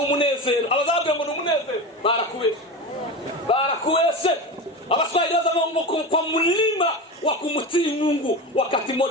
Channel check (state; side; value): normal; both; correlation 0.25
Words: umunezero. Abazabwira ngo ni umunezero barakubeshe. Abaswahili wazama kwa mlima wa kumtii Mungu wakati